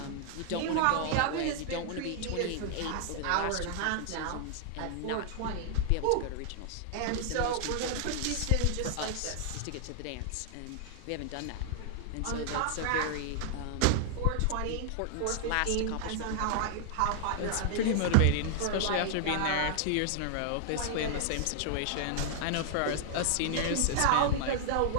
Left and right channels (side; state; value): both; different; correlation -0.01